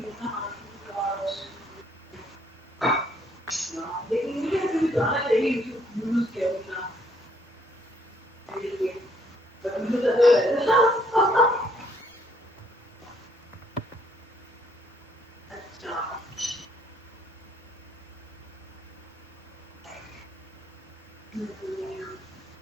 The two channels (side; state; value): both; normal; correlation 0.67